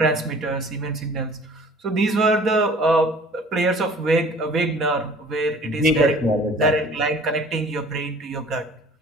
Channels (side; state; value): both; normal; correlation 0.49